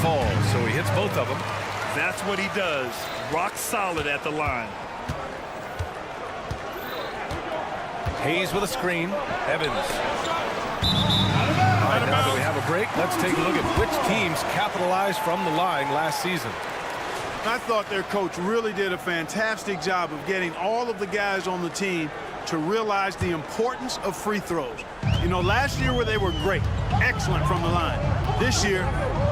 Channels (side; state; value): both; identical; correlation 1.00